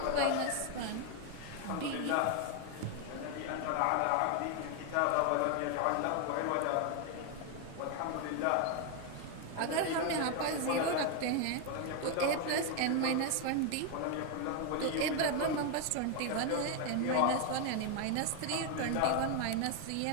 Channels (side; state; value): both; different; correlation 0.01